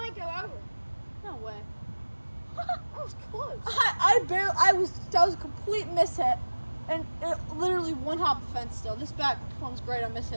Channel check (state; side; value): inverted; both; correlation -1.00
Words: go over. No way. That was close. That was a complete mishit, and it literally one hop the fence. Still, this bat performs great on